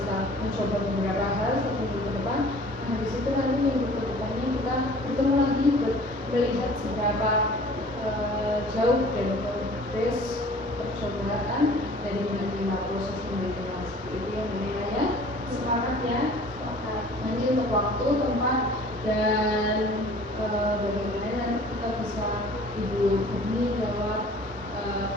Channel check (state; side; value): normal; both; correlation 0.48